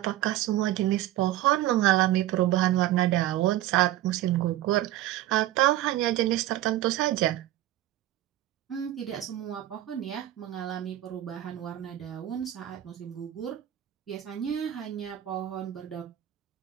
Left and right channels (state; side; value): quieter; left; 14.1 dB